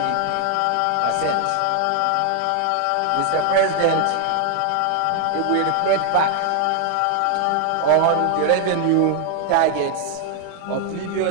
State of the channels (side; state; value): both; different; correlation 0.00